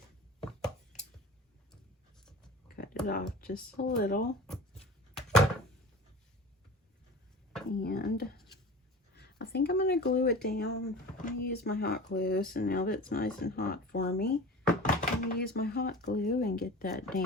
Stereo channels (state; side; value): normal; both; correlation 0.37